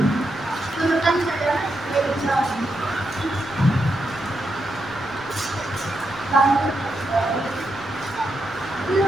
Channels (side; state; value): right; noise; rumble, 25 dB below the sound